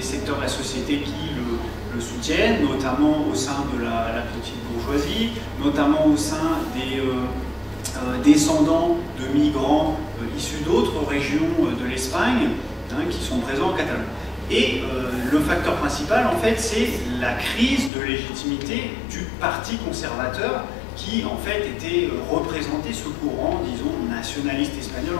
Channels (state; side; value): drops out; right; at 17.9 s